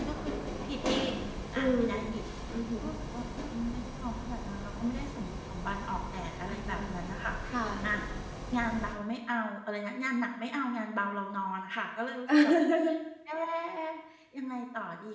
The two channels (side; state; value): both; identical; correlation 1.00